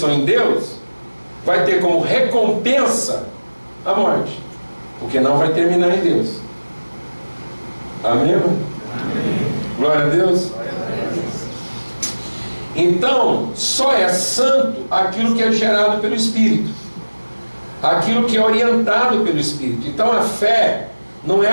em Deus vai ter como recompensa a morte, porque não vai terminar em Deus. Amém? Amém. Glória a Deus. Então, só é santo aquilo que é gerado pelo Espírito, aquilo que é orientado pelo Espírito. Então a fé não é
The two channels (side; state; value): both; inverted; correlation -1.00